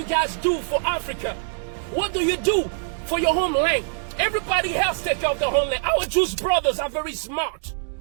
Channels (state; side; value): silent; left; digital silence